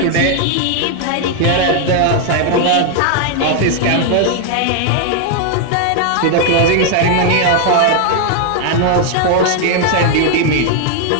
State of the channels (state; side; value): different; both; correlation 0.00